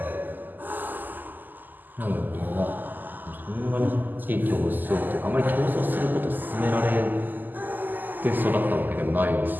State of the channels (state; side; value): late; left; 0.087 ms